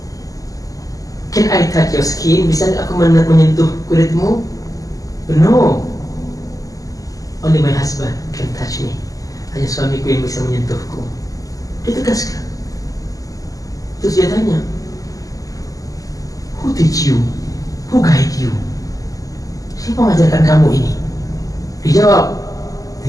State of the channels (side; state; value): right; late; 0.17 ms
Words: Can I touch your skin? Bisa aku menyentuh kulitmu? No. Only my husband can touch me. Hanya suamiku yang bisa menyentuhku. Dia tegaskan. Terus dia tanya, who teach you? Who guide you? Siapa mengajarkan kamu ini? Dijawab,